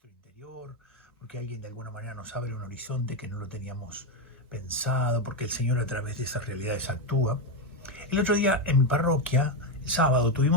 interior, porque alguien de alguna manera nos abre un horizonte que no lo teníamos pensado, porque el Señor a través de esas realidades actúa. El otro día en mi parroquia, el sábado,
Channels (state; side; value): normal; both; correlation 0.08